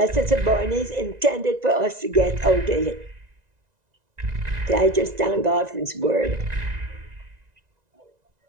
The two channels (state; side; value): late; left; 1.9 ms